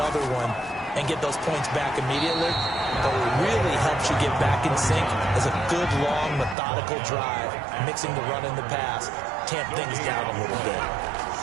one and get those points back immediately. But what really helps you get back in sync is a good, long, methodical drive, mixing the run and the pass, tamp things down a little bit.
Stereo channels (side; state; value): left; drops out; at 6.6 s